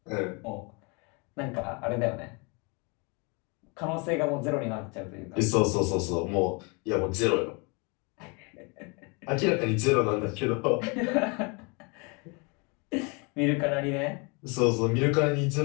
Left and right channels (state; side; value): quieter; right; 31.3 dB